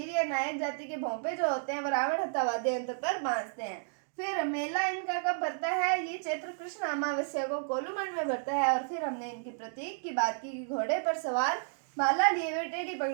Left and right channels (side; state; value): left; silent; digital silence